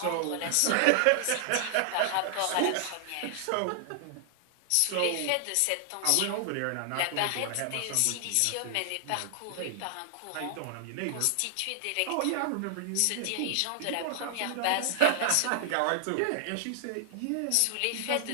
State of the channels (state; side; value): different; both; correlation -0.01